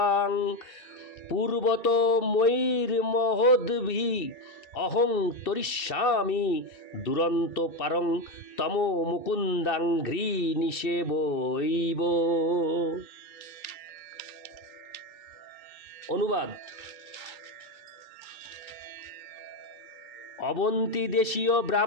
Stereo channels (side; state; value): right; late; 2.6 ms